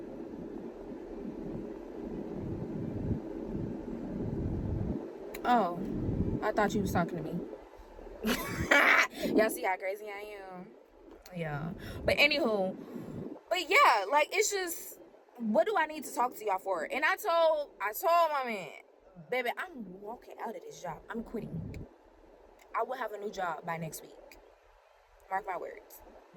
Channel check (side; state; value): both; identical; correlation 1.00